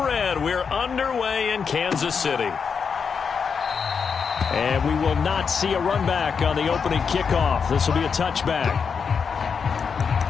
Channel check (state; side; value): quieter; right; 6.1 dB